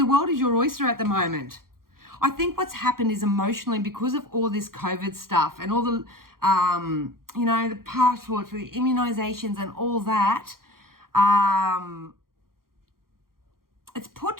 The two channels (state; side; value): late; left; 0.92 ms